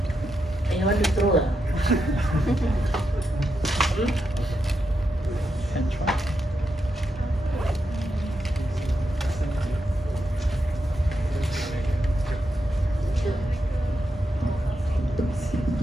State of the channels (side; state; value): both; normal; correlation 0.85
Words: And you want to throw it? Can try.